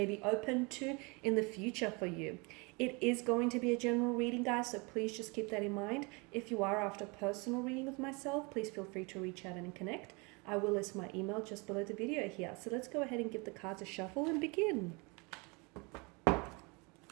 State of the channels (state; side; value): quieter; left; 29.1 dB